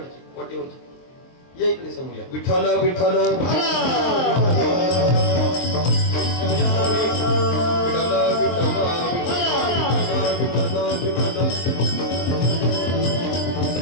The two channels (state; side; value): late; right; 23 ms